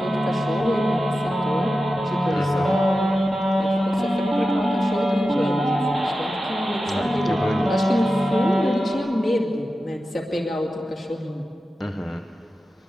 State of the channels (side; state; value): both; normal; correlation 0.93